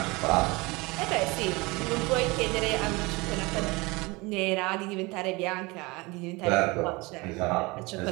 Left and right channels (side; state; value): left; quieter; 24.6 dB